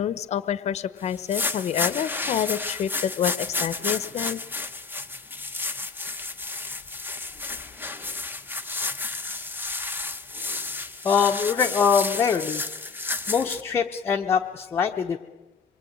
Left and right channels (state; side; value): quieter; right; 5.8 dB